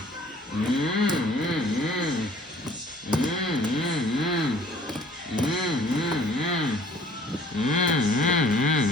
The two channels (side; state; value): both; normal; correlation 0.53